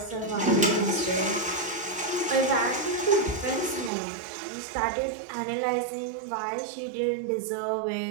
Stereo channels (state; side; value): drops out; left; at 3.9 s